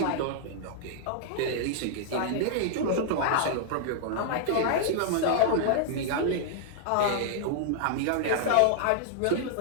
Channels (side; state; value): both; different; correlation -0.01